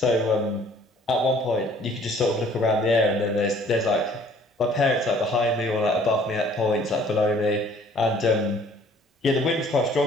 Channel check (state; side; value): normal; both; correlation 0.56